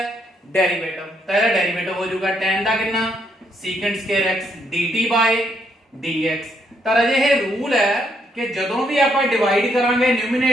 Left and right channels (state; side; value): normal; both; correlation 0.74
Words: ਡੈਰੀਵੇਟਿਵ। ਤਾਂ ਇਹਦਾ ਡੈਰੀਵੇਟਿਵ ਹੋ ਜਾਊਗਾ tan ਦਾ ਕਿੰਨਾ secant square x dt by dx। ਤਾਂ ਰਾਜੇ ਇਹ ਰੂਲ ਹੈ ਕਿ ਜਦੋਂ ਵੀ ਆਪਾਂ ਡਿਵਾਈਡ ਕਰਾਂਗੇ